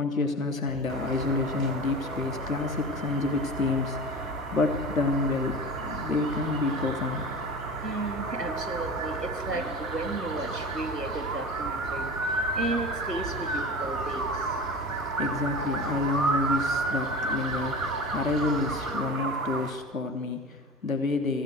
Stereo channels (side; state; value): both; normal; correlation 0.33